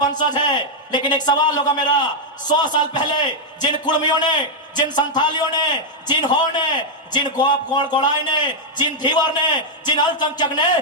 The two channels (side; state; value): both; normal; correlation -0.03